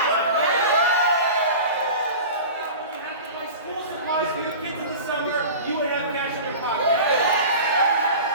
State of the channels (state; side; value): inverted; both; correlation -0.34